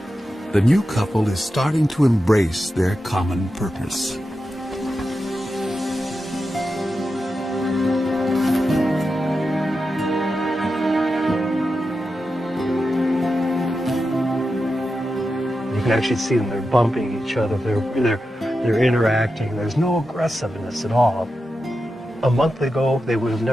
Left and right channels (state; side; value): normal; both; correlation 0.90